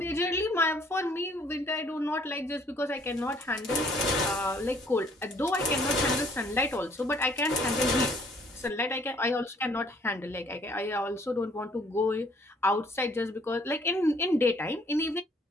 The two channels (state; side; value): normal; both; correlation 0.61